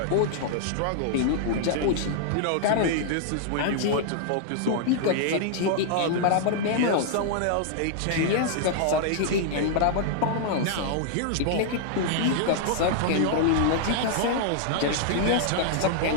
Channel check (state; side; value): different; both; correlation -0.01